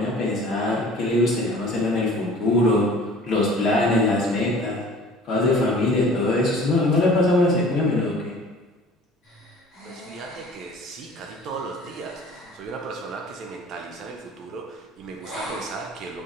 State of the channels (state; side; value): normal; both; correlation 0.47